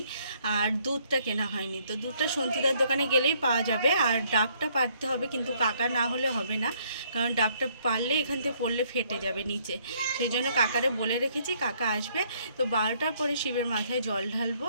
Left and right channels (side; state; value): both; inverted; correlation -0.66